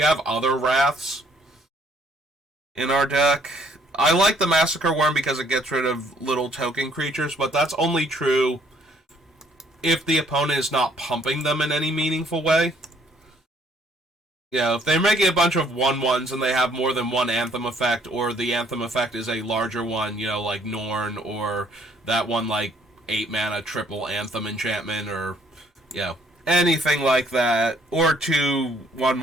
other Wraths in our deck. I like the Massacre Worm because it gets rid of little token creatures, but that's only true if the opponent is not pumping them in any meaningful way. If they're making a bunch of 1/1s and they have more than one Anthem effect, or the Anthem effect is a larger one, like Norn, or that one, 8 mana triple Anthem enchantment, or, anything like that, or 2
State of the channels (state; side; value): normal; both; correlation 0.64